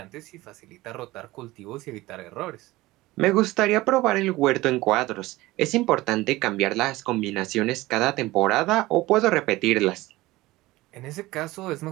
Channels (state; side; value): quieter; left; 18.9 dB